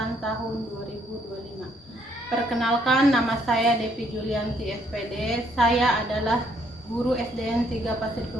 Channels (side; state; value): both; normal; correlation 0.68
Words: tahun 2025. Perkenalkan, nama saya Devi Julianti SPD. Saya adalah guru SDN 3 Pasir